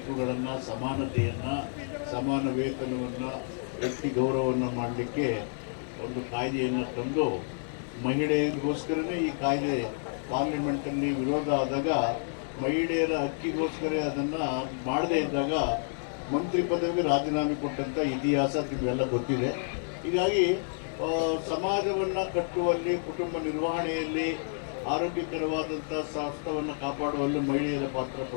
ಸಮಾನತೆಯನ್ನು, ಸಮಾನ ವೇತನವನ್ನು, ವ್ಯಕ್ತಿ ಗೌರವವನ್ನು ಮಾಡಲಿಕ್ಕೆ ಒಂದು ಕಾಯ್ದೆಯನ್ನು ತಂದು, ಮಹಿಳೆಯರಿಗೋಸ್ಕರನೇ ಈ ಕಾಯ್ದೆ ಪಾರ್ಲಿಮೆಂಟಲ್ಲಿ ವಿರೋಧ ಆದಾಗ, ಮಹಿಳೆಯರ ಹಕ್ಕಿಗೋಸ್ಕರ ಅದನ್ನು ಮಾಡದೇ ಇದ್ದಾಗ ಮಂತ್ರಿ ಪದವಿಗೆ ರಾಜೀನಾಮೆ ಕೊಟ್ಟಂಥ ಇತಿಹಾಸ ನಿಮಗೆಲ್ಲ ಗೊತ್ತಿದೆ. ಹೀಗಾಗಿ ಸಮಾಜವನ್ನು ಕಟ್ಟುವಲ್ಲಿ, ಕುಟುಂಬ ನಿರ್ವಹಣೆಯಲ್ಲಿ, ಆರೋಗ್ಯಕರವಾದಂಥ ಸ್ವಾಸ್ಥ್ಯವನ್ನು ಕಾಪಾಡುವಲ್ಲಿ ಮಹಿಳೆಯರ ಪಾತ್ರ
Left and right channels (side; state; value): right; silent; digital silence